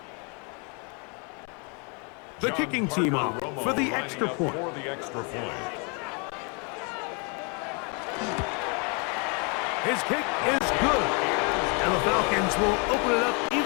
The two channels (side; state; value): right; quieter; 34.6 dB